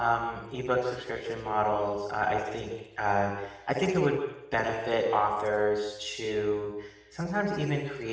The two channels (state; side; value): identical; both; correlation 1.00